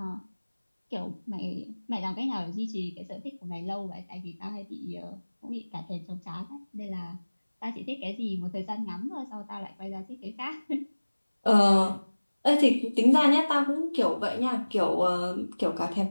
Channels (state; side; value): inverted; both; correlation -1.00